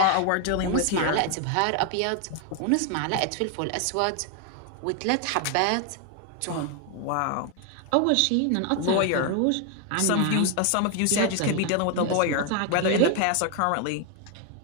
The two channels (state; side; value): different; both; correlation 0.01